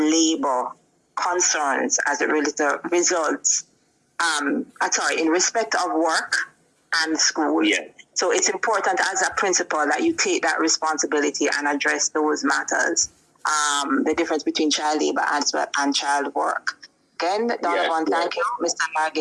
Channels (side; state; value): both; identical; correlation 1.00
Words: concerns as it results, in respect of work and school. Yeah. So it's important as a principal that you take that responsibility and address those matters, the difference between child labor and child work. Again, Donovan, thank you. Mr.